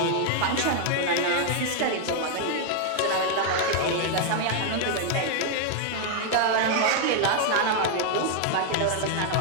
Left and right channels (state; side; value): different; both; correlation 0.00